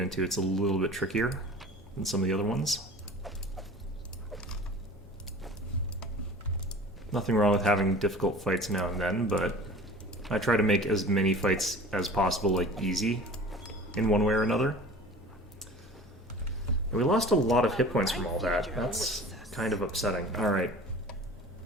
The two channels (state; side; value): normal; both; correlation 0.41